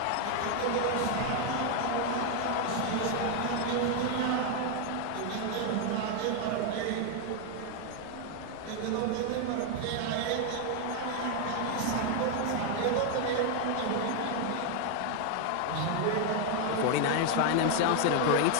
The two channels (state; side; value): different; both; correlation 0.01